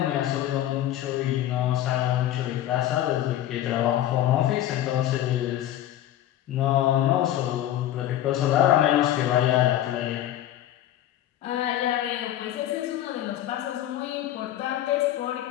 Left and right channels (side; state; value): right; quieter; 12.6 dB